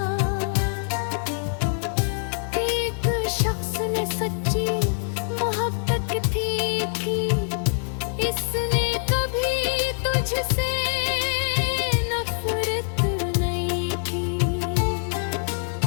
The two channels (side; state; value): right; silent; digital silence